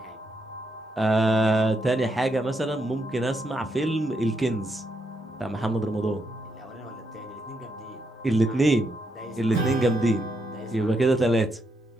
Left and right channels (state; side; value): normal; both; correlation 0.79